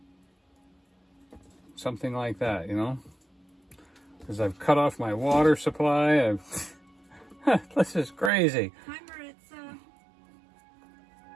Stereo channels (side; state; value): left; drops out; at 8.3 s